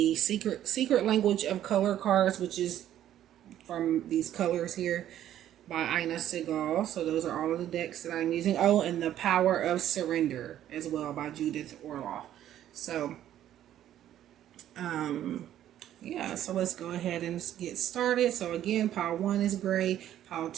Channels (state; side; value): quieter; left; 11.7 dB